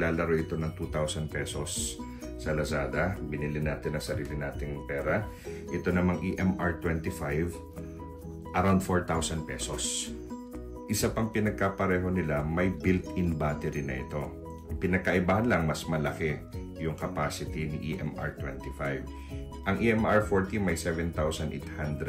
ito ng 2,000 pesos sa Lazada. Binili natin ang sarili nating pera. Ito namang EMR 25, around 4,000 pesos. Isa pang pinagkapareho nila, may built-in battery na ito. Ang pinagkaibahan lang, mas malaki yung capacity ni EMR 25. Ang EMR 40 may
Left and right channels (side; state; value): both; identical; correlation 1.00